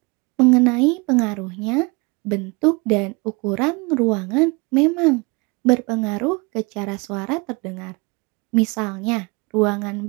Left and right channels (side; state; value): left; quieter; 28.2 dB